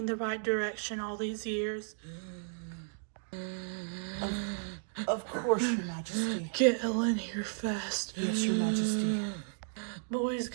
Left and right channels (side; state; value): left; silent; digital silence